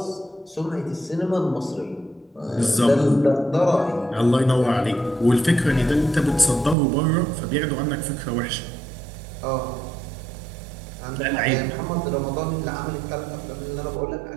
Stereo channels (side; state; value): left; drops out; at 6.8 s